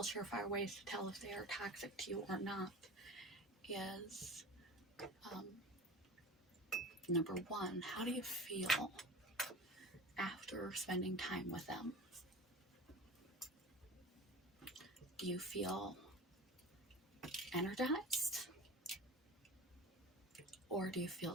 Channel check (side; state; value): both; normal; correlation 0.34